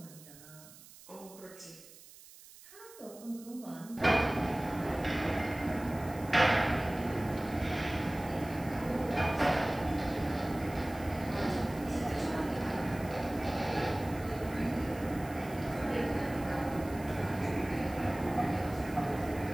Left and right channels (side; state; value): right; noise; hiss, 20 dB below the sound